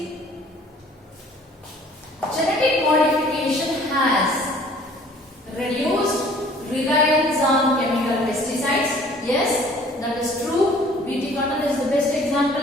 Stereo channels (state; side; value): normal; both; correlation 0.53